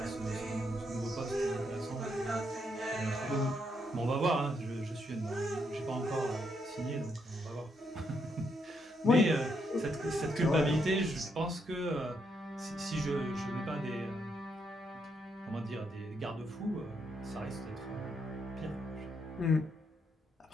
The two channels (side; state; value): both; normal; correlation 0.77